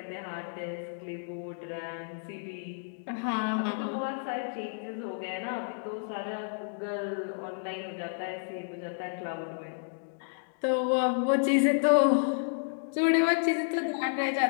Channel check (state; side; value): silent; right; digital silence